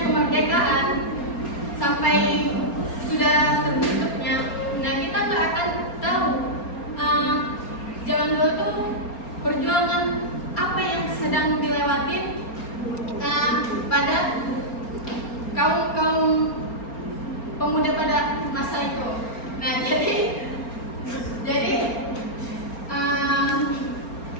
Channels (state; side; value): late; right; 4.3 ms